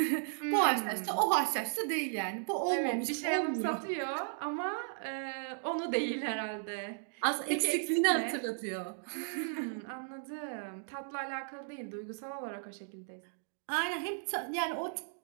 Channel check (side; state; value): left; silent; digital silence